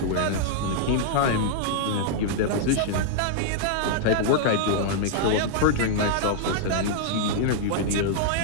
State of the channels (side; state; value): both; different; correlation -0.01